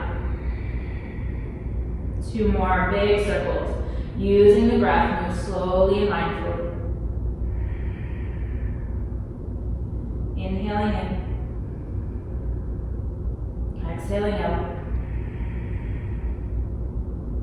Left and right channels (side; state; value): both; identical; correlation 1.00